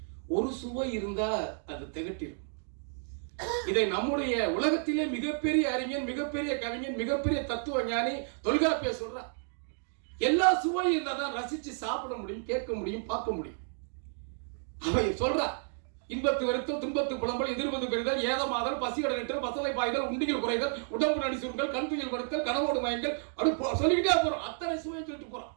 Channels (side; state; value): left; silent; 57 dB below the other